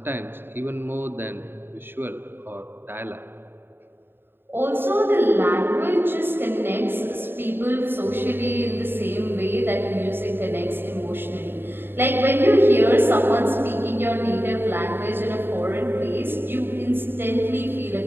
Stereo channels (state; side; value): late; left; 0.10 ms